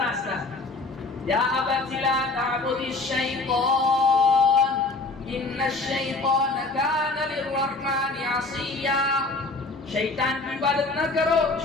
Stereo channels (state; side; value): quieter; right; 3.4 dB